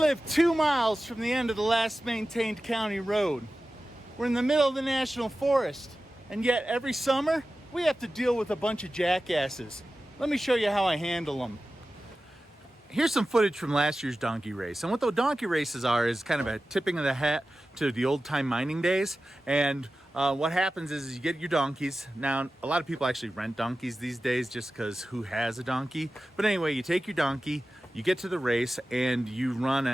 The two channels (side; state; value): both; normal; correlation 0.94